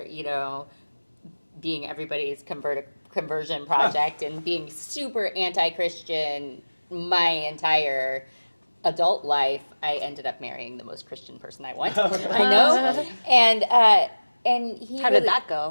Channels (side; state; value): both; inverted; correlation -1.00